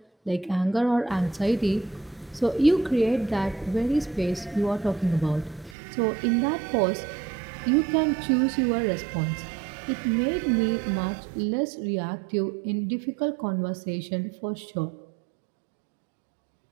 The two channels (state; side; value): drops out; left; at 5.8 s